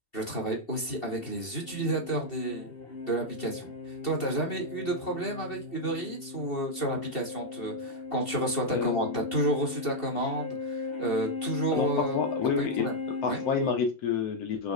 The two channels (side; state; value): right; late; 2.7 ms